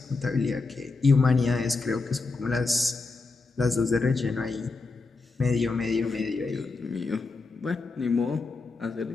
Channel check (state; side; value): quieter; right; 3.9 dB